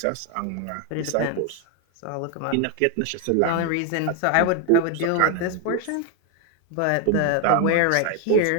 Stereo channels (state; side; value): different; both; correlation 0.01